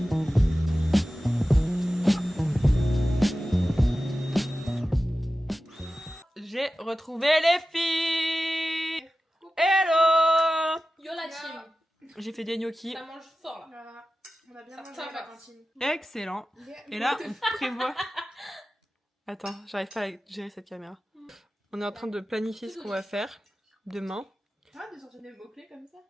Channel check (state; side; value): normal; both; correlation 0.95